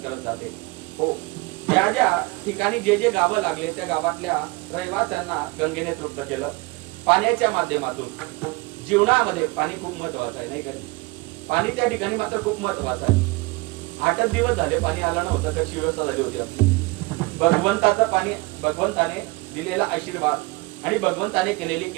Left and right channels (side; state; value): left; quieter; 23.9 dB